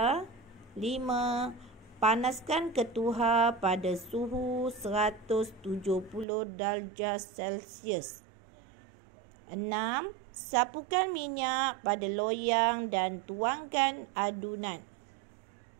5. Panaskan ketuhar pada suhu 170 darjah Celsius. 6. Sapukan minyak pada loyang dan tuangkan adunan.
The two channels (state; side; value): drops out; left; at 6.2 s